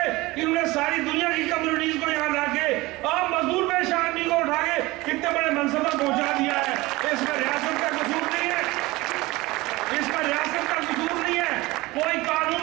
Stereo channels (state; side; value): quieter; left; 20.8 dB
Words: انہوں نے ساری دنیا کی کمیونٹیز کو یہاں لا کے عام مزدور پیشہ آدمی کو اٹھا کے کتنے بڑے منصب پر پہنچا دیا ہے. اس میں ریاست کا قصور نہیں ہے, اس میں ریاست کا قصور نہیں ہے. کوئی